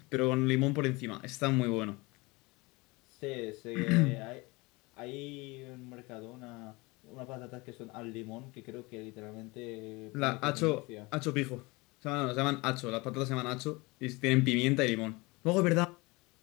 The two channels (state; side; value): quieter; right; 24.5 dB